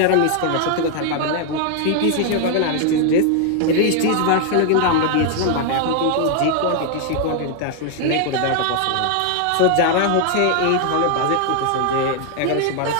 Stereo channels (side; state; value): both; different; correlation 0.00